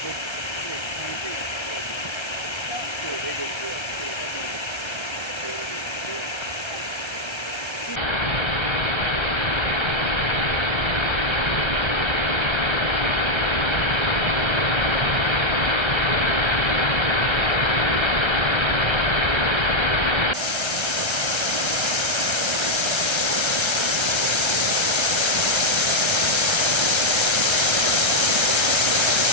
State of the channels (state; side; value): late; right; 1.3 ms